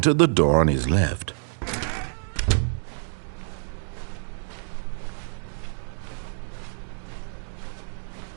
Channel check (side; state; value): left; silent; digital silence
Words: the door on his left.